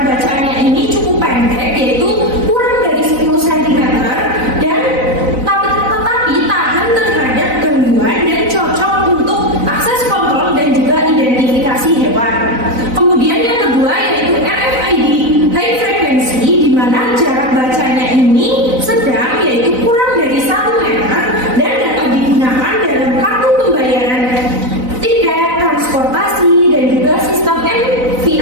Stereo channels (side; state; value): left; late; 4.0 ms